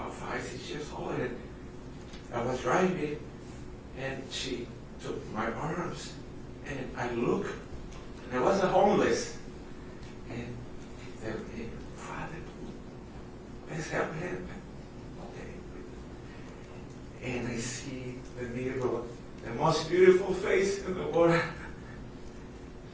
6 years old, and I was driving, and she took my arms, and I looked, and I was a homeless, and they said, hey, Father, let's help him. Okay. And I see the mirror, the most beautiful face in the world,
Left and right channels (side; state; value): both; identical; correlation 1.00